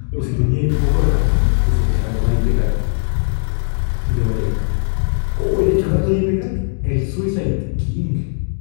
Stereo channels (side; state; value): right; silent; 66 dB below the other